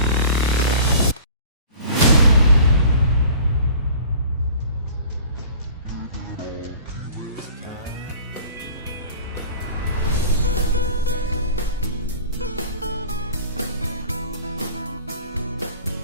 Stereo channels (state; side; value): inverted; both; correlation -0.45